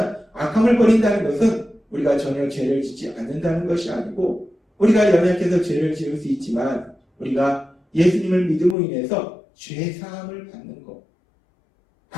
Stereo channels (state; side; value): drops out; right; at 8.8 s